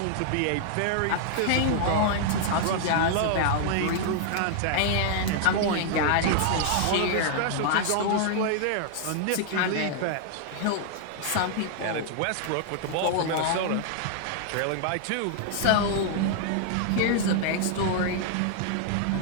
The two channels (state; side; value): different; both; correlation -0.01